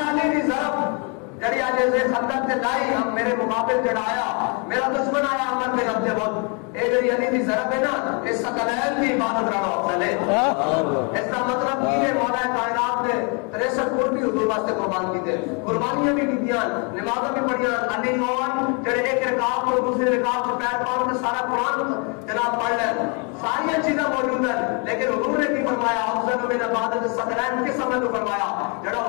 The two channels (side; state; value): right; quieter; 34.8 dB